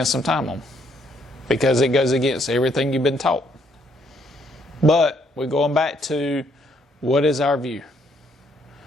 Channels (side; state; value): both; normal; correlation 0.70